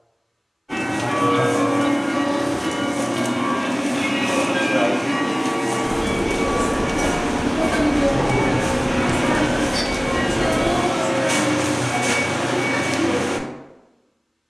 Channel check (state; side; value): identical; both; correlation 1.00